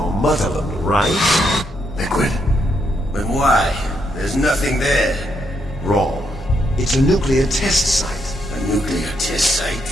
motherland, right? Liquid? But why? There's nothing there. Wrong. It's a nuclear test site. A nuclear test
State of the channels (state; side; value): normal; both; correlation 0.77